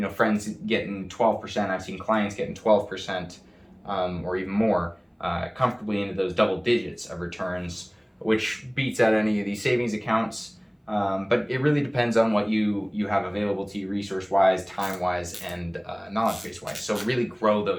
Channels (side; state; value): both; identical; correlation 1.00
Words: friends getting 12%, I've seen clients getting 12% or even more, comfortably into those double digits of returns, which beats out any of these savings accounts. But it really depends on what you have available to you resource-wise, time-wise, and knowledge base-wise. So really grow